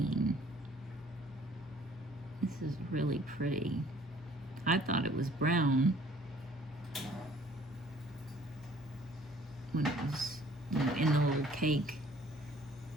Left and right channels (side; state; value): both; normal; correlation 0.56